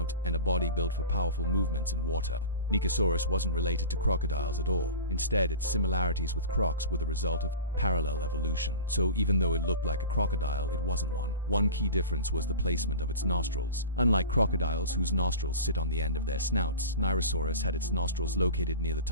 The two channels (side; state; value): both; inverted; correlation -0.33